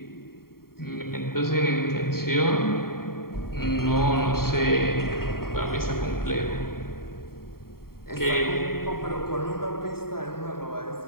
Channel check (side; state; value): right; late; 0.93 ms